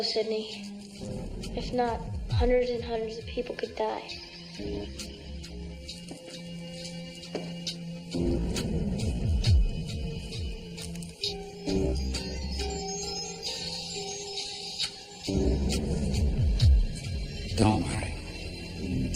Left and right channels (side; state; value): both; identical; correlation 1.00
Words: Sidney. If not, hundreds and hundreds of people could die. Don't worry.